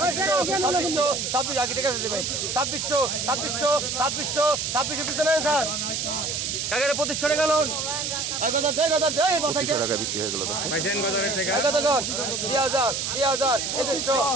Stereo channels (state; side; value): noise; right; hiss, 2 dB below the sound